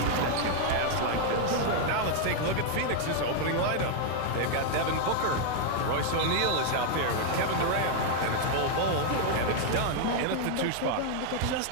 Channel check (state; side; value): different; both; correlation 0.00